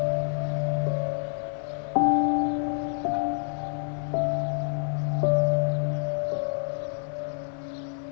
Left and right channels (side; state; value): right; silent; 60 dB below the other